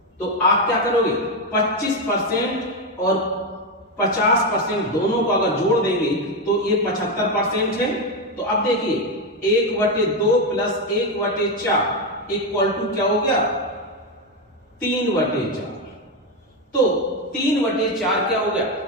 तो आप क्या करोगे 25% और 50% दोनों को अगर जोड़ देंगे तो ये 75% है। तो अब देखिए 1/2 प्लस 1/4 इक्वल टू क्या हो गया 3/4। तो 3/4 क्या हो गया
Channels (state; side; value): normal; both; correlation 0.09